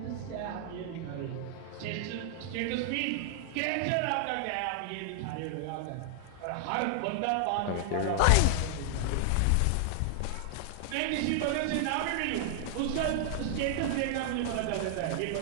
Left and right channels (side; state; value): both; different; correlation 0.00